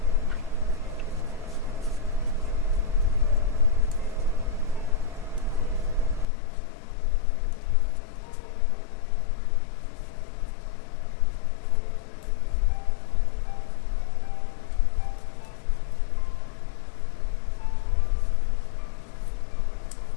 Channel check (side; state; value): right; drops out; at 6.2 s